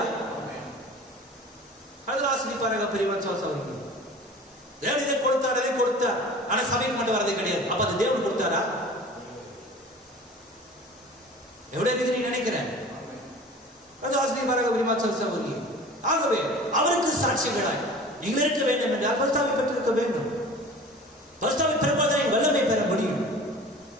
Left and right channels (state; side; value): normal; both; correlation 0.41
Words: அதில் ஆசிரிப்பாராக பெரியவன் சோசவருக்கு தேவன் இதை கொடுத்தார், அதை கொடுத்தார். ஆனா சபைக்கு மட்டும் வரதே கிடையாது. அப்ப அது தேவன் கொடுத்தாரா? எவ்வளவு இருக்கிறீங்க நினைக்கிறேன். ஆசிரியப்பாராக பெரியவன் சோசவருக்கு. ஆகவே அவருக்கு சாட்சிகளாய் நீங்கள் இருக்க வேண்டும் என்றால் பரிசுத்தாவை பெற்றிருக்க வேண்டும். பரிசுத்தாவை பெறுவதை வல்லமை பெற முடியும்.